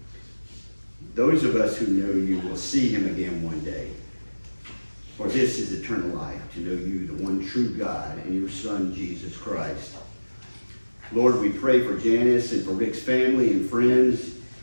Those of us who know you will see him again one day. For this is eternal life, to know you, the one true God, and your Son, Jesus Christ. Lord, we pray for Janice and for Rick's family and friends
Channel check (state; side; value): inverted; both; correlation -1.00